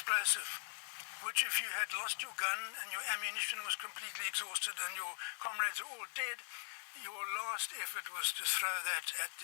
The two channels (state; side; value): silent; right; 50 dB below the other